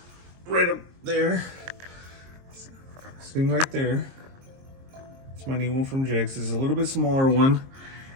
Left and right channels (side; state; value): left; late; 22 ms